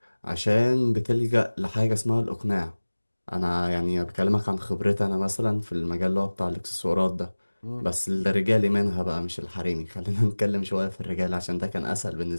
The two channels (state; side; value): inverted; both; correlation -1.00